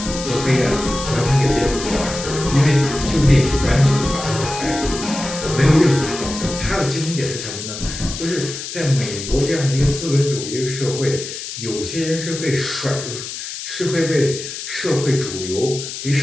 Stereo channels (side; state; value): left; noise; hiss, 8 dB below the sound